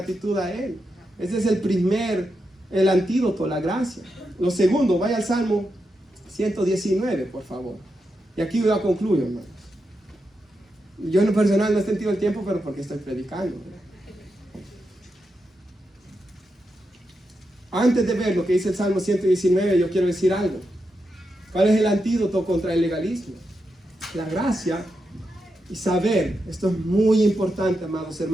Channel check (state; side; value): normal; both; correlation 0.86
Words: a Él. Ese es el antídoto, la gracia. Lo segundo, vaya al Salmo 119, por favor. Y aquí voy a concluir, hermanos. Yo en lo personal no he sentido el tiempo, pero porque estoy predicando, ¿verdad? Antes de ver lo que dice el Salmo 119, yo quiero decir algo. ¿Cuál es el antídoto contra el legalismo? La gracia y saber, esto es muy importante, amados